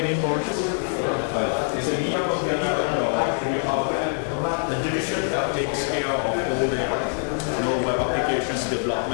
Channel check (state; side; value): silent; right; 62 dB below the other